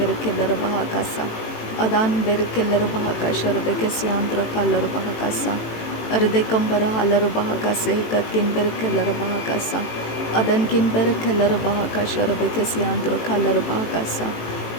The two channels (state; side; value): late; right; 18 ms